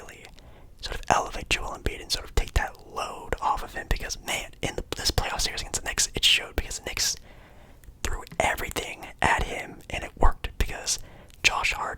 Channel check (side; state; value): both; identical; correlation 1.00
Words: sort of elevate Joel Embiid and sort of take that load off of him. Because man, in this playoff series against the Knicks, it showed, because the Knicks threw everything at him and it worked, because Josh